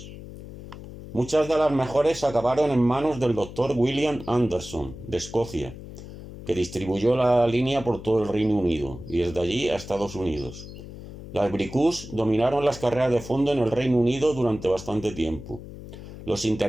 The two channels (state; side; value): noise; left; hum, 13 dB below the sound